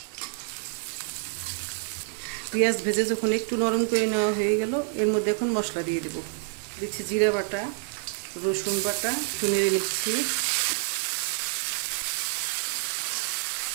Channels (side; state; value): left; silent; 60 dB below the other